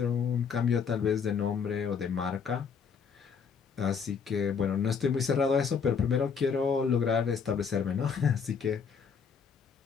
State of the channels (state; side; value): quieter; right; 6.2 dB